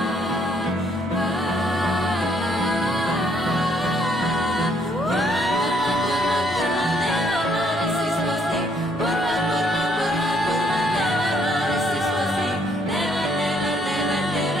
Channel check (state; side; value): normal; both; correlation 0.68